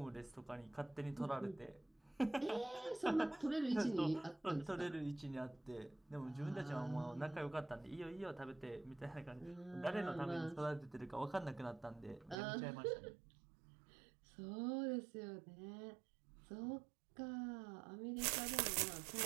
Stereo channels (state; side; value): drops out; left; at 12.4 s